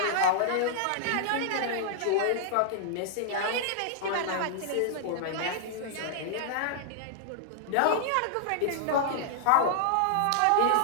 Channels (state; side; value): different; both; correlation -0.01